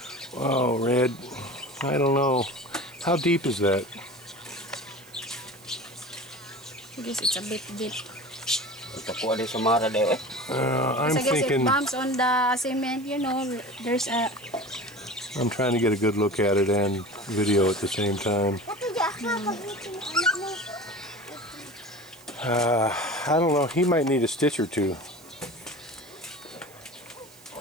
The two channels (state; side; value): noise; right; hiss, 24 dB below the sound